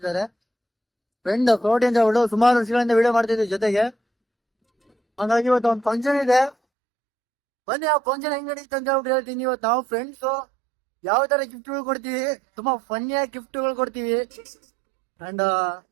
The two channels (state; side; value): drops out; left; at 6.6 s